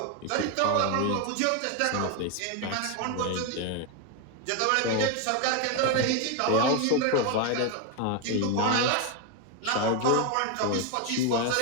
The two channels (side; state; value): both; different; correlation 0.01